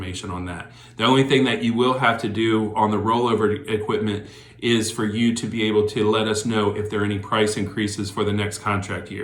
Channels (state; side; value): identical; both; correlation 1.00